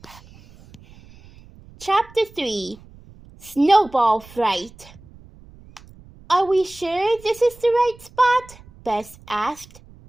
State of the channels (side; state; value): right; noise; rumble, 23 dB below the sound